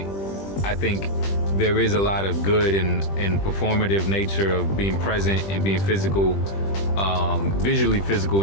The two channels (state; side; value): late; right; 20 ms